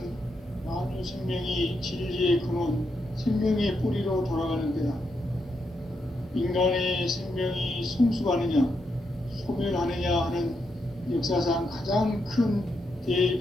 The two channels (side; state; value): both; normal; correlation 0.82